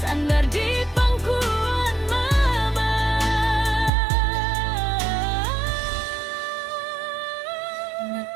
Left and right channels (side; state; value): left; drops out; at 3.9 s